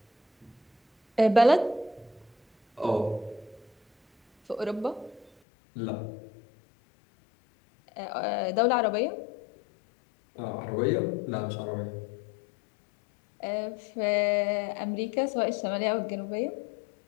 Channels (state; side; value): drops out; right; at 5.3 s